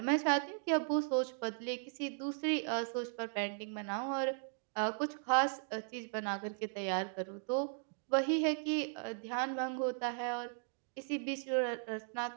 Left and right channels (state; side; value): silent; left; digital silence